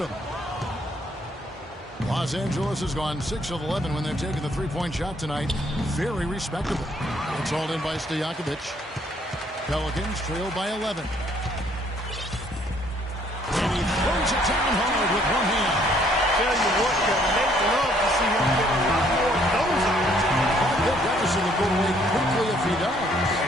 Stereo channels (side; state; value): both; normal; correlation 0.65